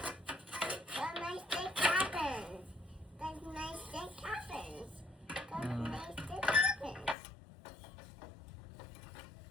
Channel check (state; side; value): drops out; right; at 7.2 s